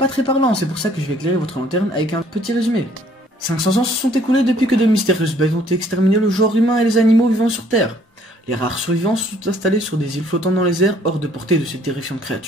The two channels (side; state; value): both; normal; correlation 0.61